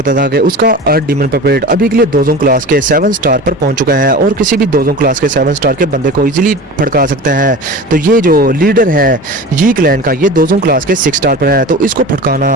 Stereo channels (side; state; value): both; normal; correlation 0.34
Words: था कि उसका अर्थ डीमन पपेट अभी के लिए 2 क्लास के 7 स्टार पर पहुंच चुका है, और किसी भी 2 क्लास के 7 स्टार के बंदे को इजीली भड़का सकता है। तो ये जो लीडर है यी क्लैन का, ये 2 क्लास के 6 स्टार पर है, तो इसको